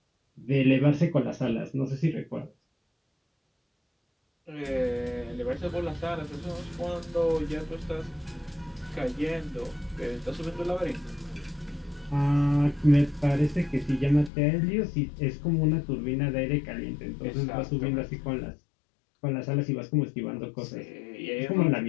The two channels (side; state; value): right; drops out; at 14.3 s